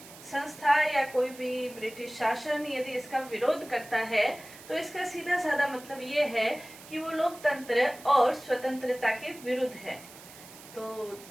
संस्था या कोई भी ब्रिटिश शासन यदि इसका विरोध करता है तो इसका सीधा साधा मतलब ये है कि वो लोकतंत्र और स्वतंत्रता के विरुद्ध है। तो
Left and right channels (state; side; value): noise; right; hiss, 18 dB below the sound